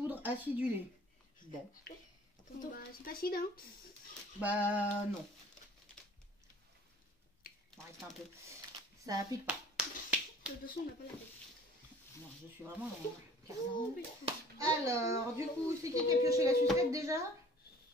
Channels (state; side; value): normal; both; correlation 0.51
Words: acidulée. Bon. Bon, bah, c'est facile, hein. Bah, non. On va arrêter un peu. Ça pique pas. De toute façon, on n'a pas la tête. Non, je suis vraiment dans le carnage. Alors, du coup, c'est qui a pioché la sucette déjà?